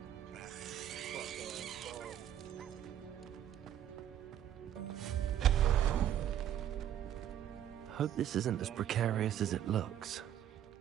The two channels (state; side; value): quieter; left; 10.6 dB